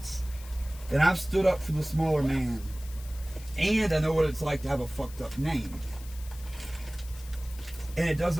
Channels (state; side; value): noise; left; hiss, 19 dB below the sound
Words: And I've stood up for the smaller man. And I know what it's like to have a fucked up name. And it